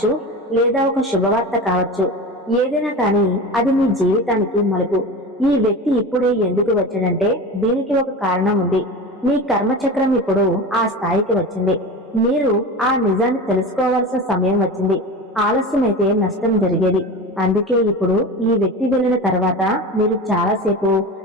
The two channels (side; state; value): both; normal; correlation 0.29